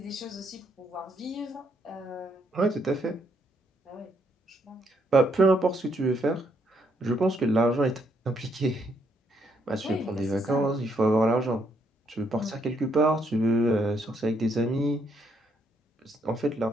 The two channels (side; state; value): both; normal; correlation 0.73